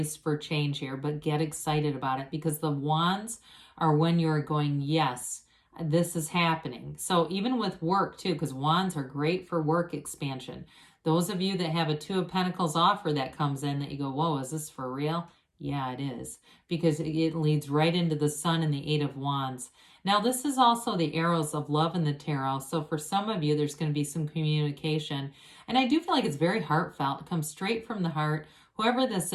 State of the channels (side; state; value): both; identical; correlation 1.00